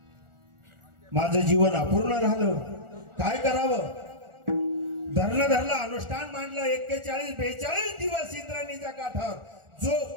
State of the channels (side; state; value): left; late; 1.4 ms